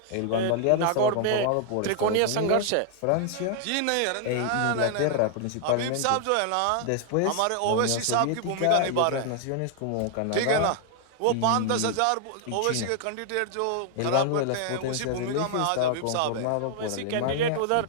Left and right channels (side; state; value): both; different; correlation 0.00